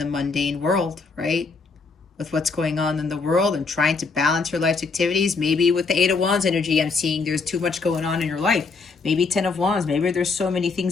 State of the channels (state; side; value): quieter; right; 4.4 dB